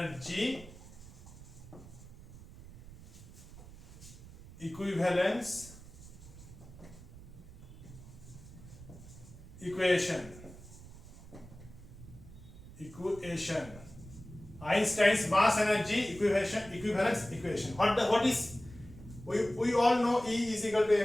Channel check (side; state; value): right; noise; rumble, 17 dB below the sound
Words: equivalence equation. Einstein's mass energy equivalence equation. What is we all know E is equal to